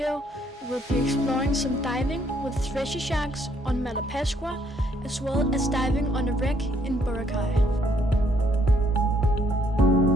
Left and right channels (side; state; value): both; normal; correlation 0.68